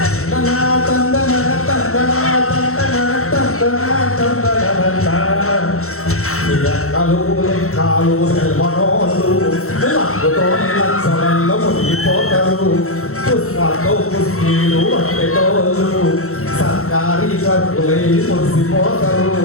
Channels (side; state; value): right; late; 0.63 ms